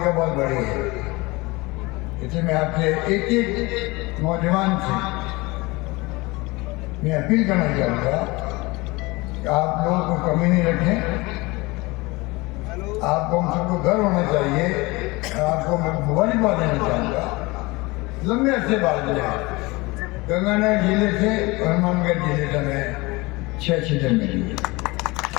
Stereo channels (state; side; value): quieter; right; 23.4 dB